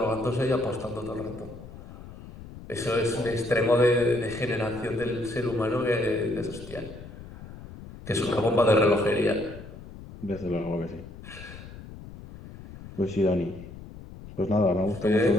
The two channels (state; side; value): noise; left; rumble, 15 dB below the sound